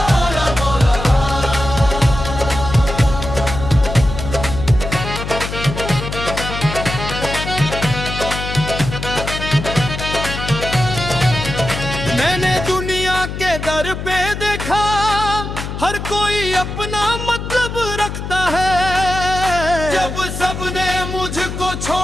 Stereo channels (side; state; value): left; noise; hum, 6 dB below the sound